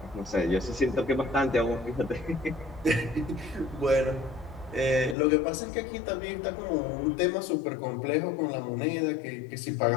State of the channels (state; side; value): drops out; right; at 5.2 s